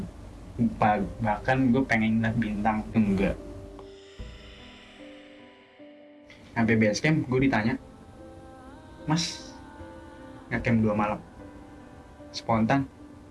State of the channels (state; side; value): identical; both; correlation 1.00